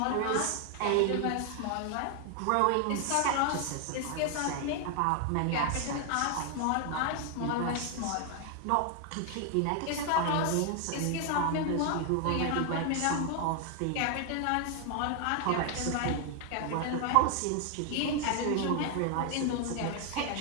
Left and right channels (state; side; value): different; both; correlation 0.01